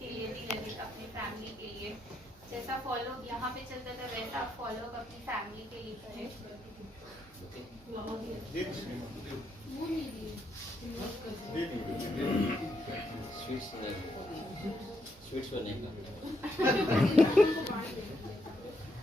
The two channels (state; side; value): normal; both; correlation 0.78